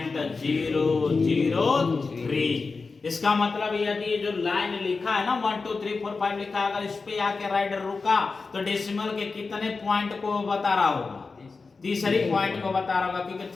इसका मतलब यदि ये जो लाइन लिखा है ना 1 2 3 4 5 लिखा है, अगर इस पे आके राइडर रुका तो डेसिमल के कितने पॉइंट को बता रहा होगा, तीसरी पॉइंट को बता रहा होगा, क्योंकि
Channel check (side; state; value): right; quieter; 4.3 dB